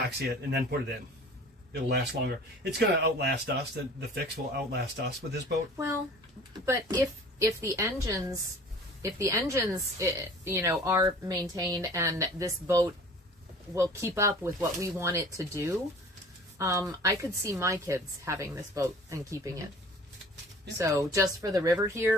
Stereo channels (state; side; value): normal; both; correlation 0.46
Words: it, and then put it in. It'll last longer. It's going to outlast us. The fix will outlast us with this boat. Well, but if the engines, you know, are maintained and this boat will keep up with what we want it to do, I could see my kids having this boat and keeping it. Yeah. So just for the river